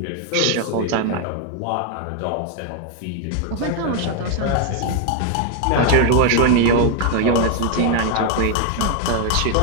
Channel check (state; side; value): different; both; correlation 0.01